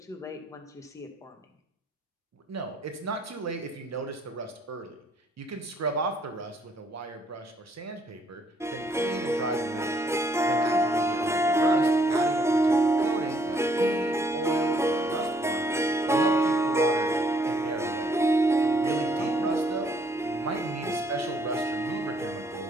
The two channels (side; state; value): both; normal; correlation 0.67